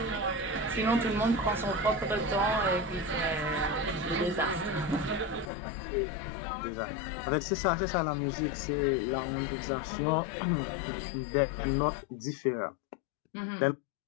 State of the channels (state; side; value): drops out; right; at 5.5 s